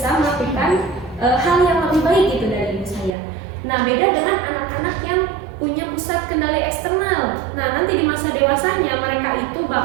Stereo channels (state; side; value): drops out; left; at 3.1 s